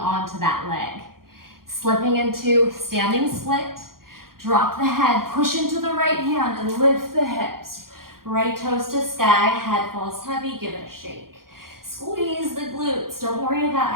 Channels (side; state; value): left; late; 0.92 ms